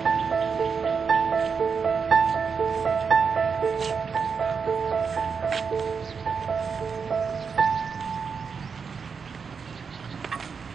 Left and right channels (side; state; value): left; quieter; 5.7 dB